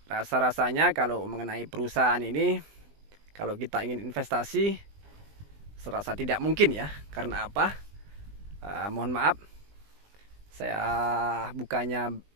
Rasa-rasanya kalau mengenai perusahaan ini, kalau kita ingin investasi, serasa tidak mungkin ya. Karena apa? Mohon maaf, saya bukannya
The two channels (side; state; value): left; late; 20 ms